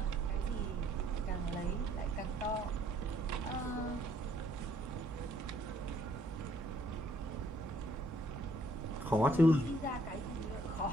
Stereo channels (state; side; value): normal; both; correlation 0.66